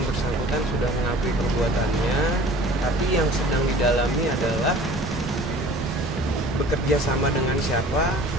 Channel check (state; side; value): normal; both; correlation 0.46